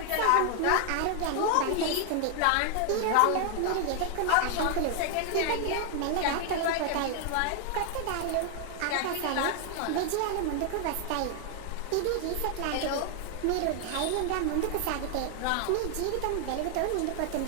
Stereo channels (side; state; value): both; different; correlation 0.00